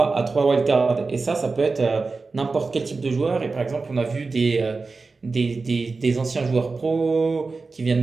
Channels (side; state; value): left; quieter; 4.0 dB